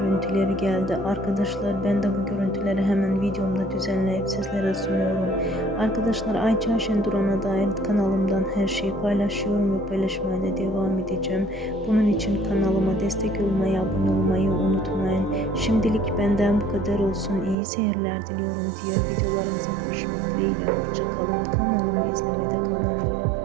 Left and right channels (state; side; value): drops out; left; at 17.6 s